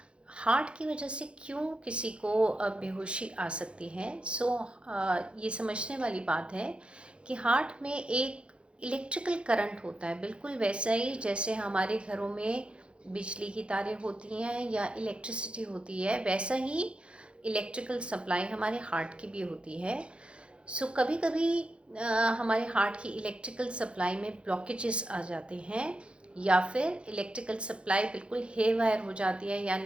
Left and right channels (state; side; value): late; left; 0.058 ms